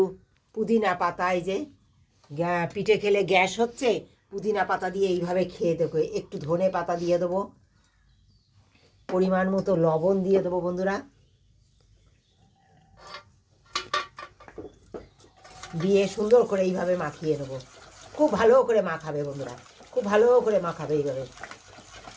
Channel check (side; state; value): both; identical; correlation 1.00